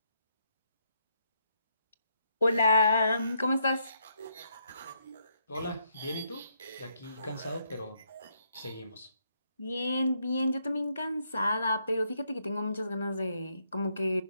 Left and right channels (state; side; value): inverted; both; correlation -0.75